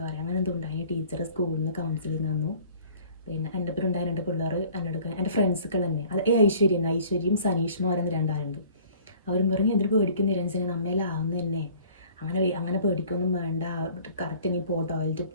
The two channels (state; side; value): inverted; both; correlation -0.52